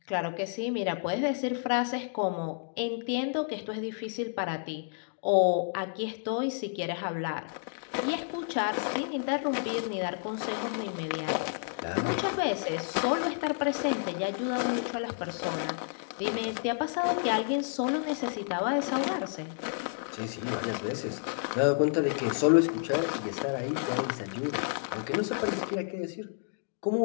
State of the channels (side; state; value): right; silent; digital silence